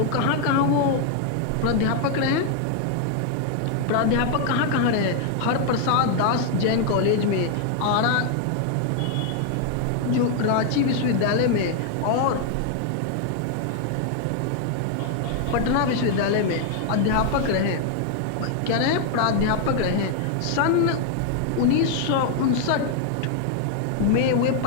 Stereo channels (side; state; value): both; different; correlation 0.00